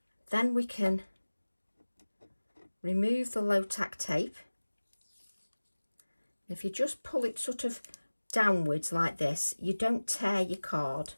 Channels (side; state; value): both; inverted; correlation -1.00